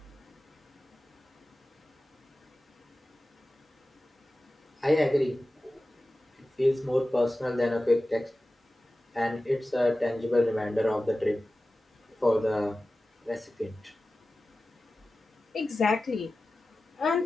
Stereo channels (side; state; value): both; normal; correlation 0.95